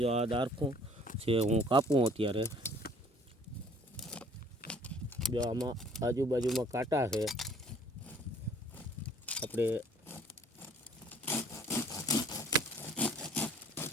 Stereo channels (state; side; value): normal; both; correlation 0.56